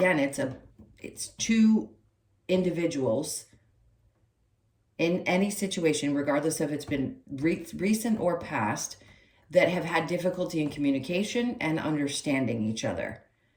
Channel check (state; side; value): identical; both; correlation 1.00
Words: it's two individuals in any situation, regardless if it's been recent or past, that have had difficulty in communication and understanding each other.